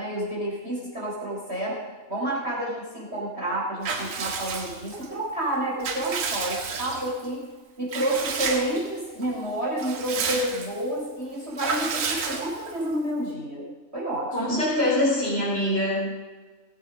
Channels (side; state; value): left; late; 3.7 ms